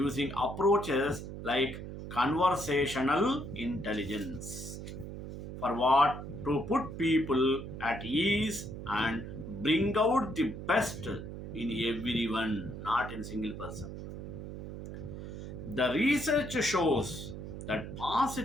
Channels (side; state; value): right; noise; hum, 9 dB below the sound